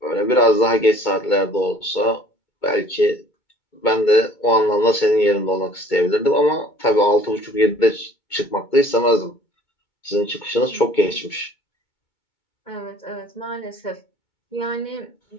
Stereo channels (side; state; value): right; late; 2.2 ms